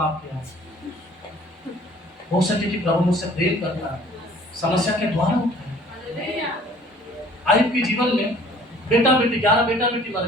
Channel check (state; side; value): normal; both; correlation 0.53